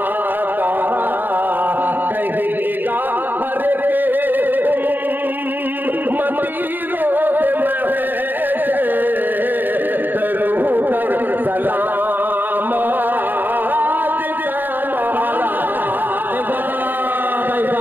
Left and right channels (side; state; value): left; late; 0.091 ms